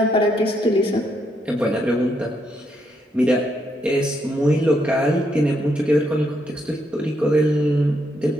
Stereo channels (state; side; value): normal; both; correlation 0.76